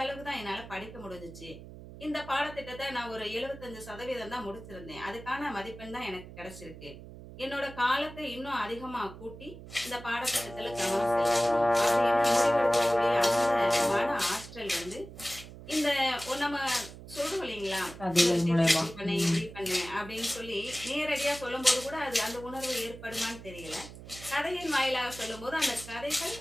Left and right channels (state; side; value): noise; right; hum, 15 dB below the sound